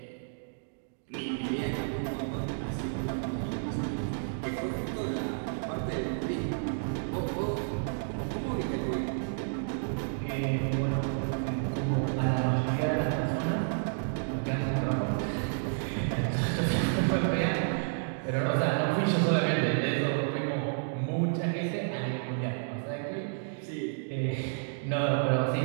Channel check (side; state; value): left; silent; digital silence